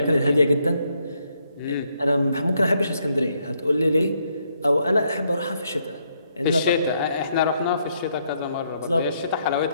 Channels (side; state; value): both; inverted; correlation -0.74